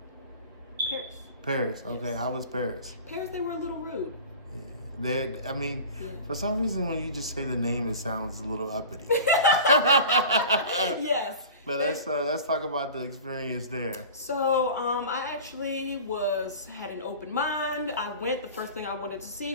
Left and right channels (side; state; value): both; inverted; correlation -0.37